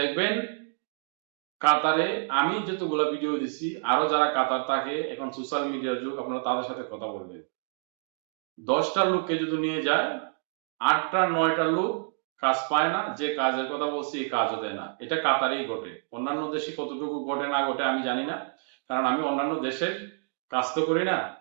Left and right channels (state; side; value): silent; left; digital silence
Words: কাতারে আমি যতগুলো ভিডিও দিচ্ছি, আরো যারা কাতার থাকে, এখন সোশ্যাল মিডিয়ার যুগ, আপনারা তাদের সাথে কথা বলবেন। 10টা লোককে যদি নিয়ে যায়, 8টা 9টা লোক কাজ পায় না, যে কাজের কথা বলছি এই কাজও দেয় না। এটা কাতারেই ঘটে, অন্যান্য দেশে কতটুকু ঘটে না ঘটে আমি জানি না, কারণ আমি অন্যান্য দেশের কাজ তো করি না,